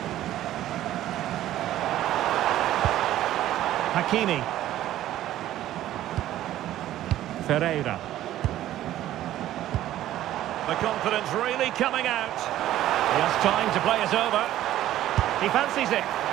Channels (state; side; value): quieter; left; 13.4 dB